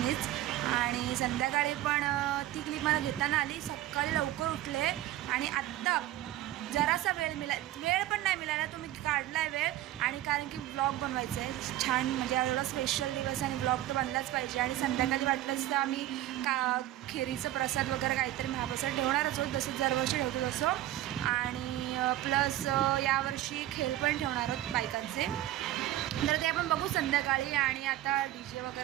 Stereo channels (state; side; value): quieter; left; 14.3 dB